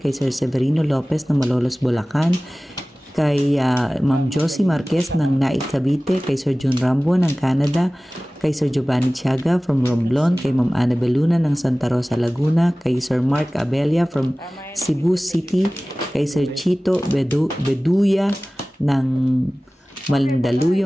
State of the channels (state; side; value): normal; both; correlation 0.98